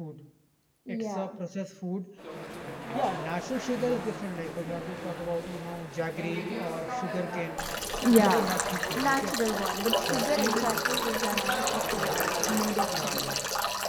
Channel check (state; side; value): identical; both; correlation 1.00